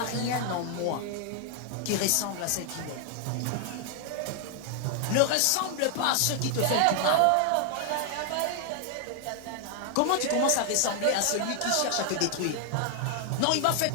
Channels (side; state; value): both; different; correlation 0.00